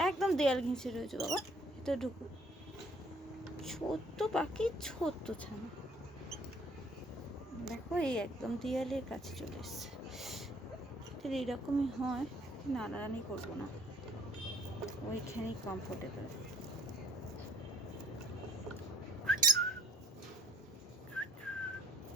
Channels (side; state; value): both; normal; correlation 0.58